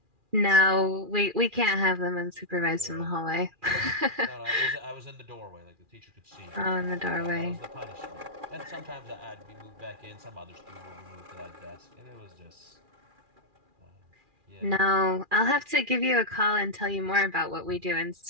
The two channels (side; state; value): left; late; 2.4 ms